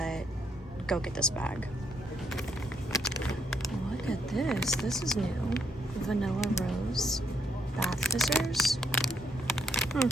go get this bag. Look at this. This is new. Vanilla rose bath fizzers.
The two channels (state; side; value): normal; both; correlation 0.74